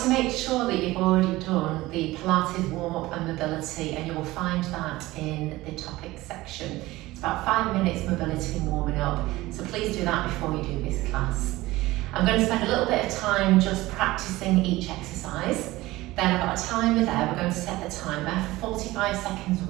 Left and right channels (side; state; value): left; quieter; 18.6 dB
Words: to make sure that you've already done the Pilates warm-up and mobility, and you will find that in the topics section. It's about 5 minutes mobility and warming up, so please do that before you do this class. I'm going to spend a little bit of time just practicing each exercise. Then I've got a timer there. We're going to set the timer for 45 seconds